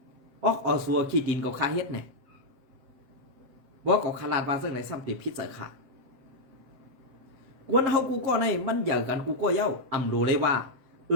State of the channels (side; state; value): left; late; 7.7 ms